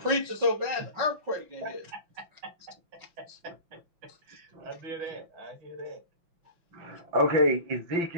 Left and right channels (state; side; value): late; left; 5.7 ms